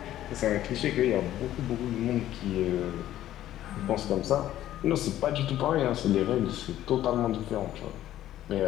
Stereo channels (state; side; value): quieter; right; 13.0 dB